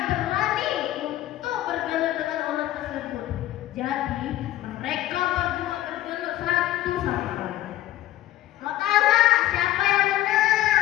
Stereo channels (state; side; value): quieter; right; 14.6 dB